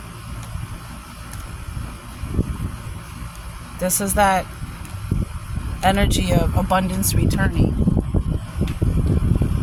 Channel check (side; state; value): both; identical; correlation 1.00